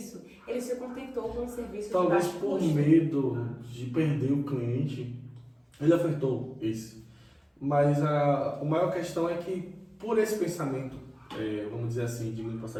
ele se contentou com um serviço Talvez de baixo por custo. medo de perder o cliente, ele ofertou esse. Mas a maior questão é que, por esse pensamento, vamos dizer assim, de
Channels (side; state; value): both; identical; correlation 1.00